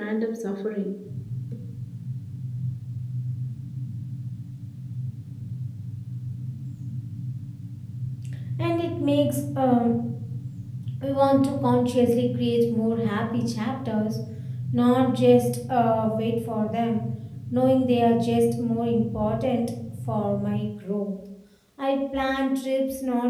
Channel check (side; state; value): both; identical; correlation 1.00